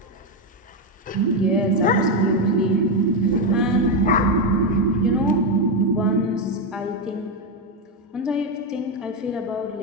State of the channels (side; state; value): both; normal; correlation 0.08